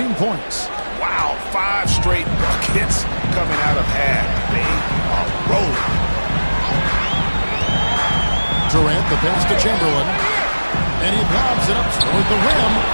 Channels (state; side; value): inverted; both; correlation -1.00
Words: points. Wow, 5 straight buckets coming out of half. They are rolling. Durant, the pass to Chamberlain. And he lobs it up toward the rim.